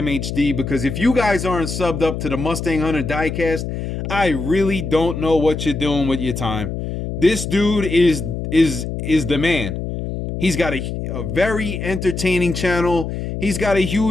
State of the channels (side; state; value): left; noise; hum, 5 dB below the sound